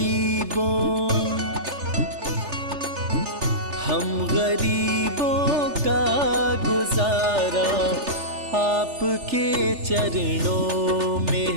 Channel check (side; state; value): left; late; 3.4 ms